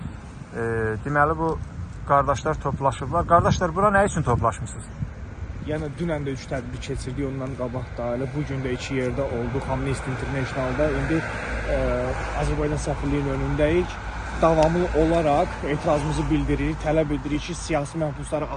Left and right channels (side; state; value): both; identical; correlation 1.00